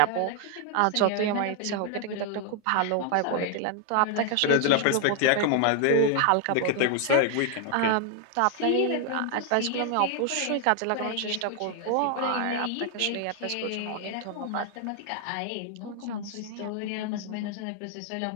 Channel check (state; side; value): different; both; correlation 0.00